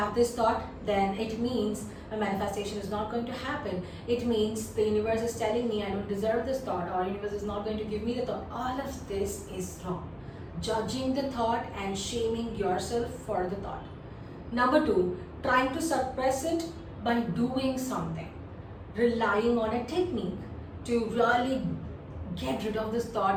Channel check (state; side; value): identical; both; correlation 1.00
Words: this thought, then it means my manifestation is not going to happen. It means the universe is telling me I don't deserve this thought, or universe is not going to give me the thought. All of this is wrong. Judging the thought and shaming yourself for the thought. Number two, trying to suppress it by doing something. Relying on a technique to really get rid of this